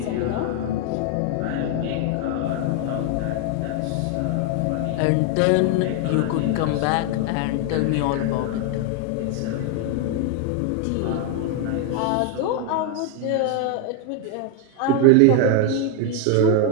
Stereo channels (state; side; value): different; both; correlation 0.01